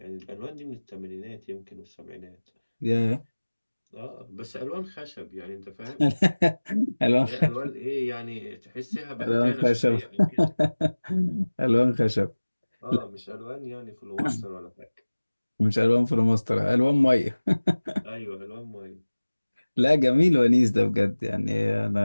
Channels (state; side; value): inverted; both; correlation -1.00